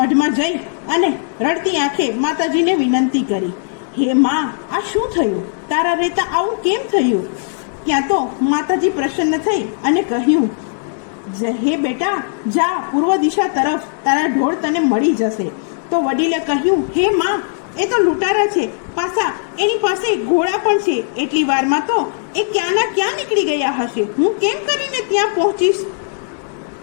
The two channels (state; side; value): silent; right; digital silence